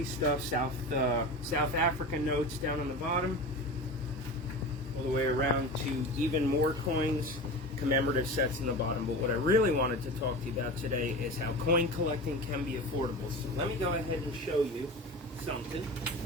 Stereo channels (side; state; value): both; normal; correlation 0.30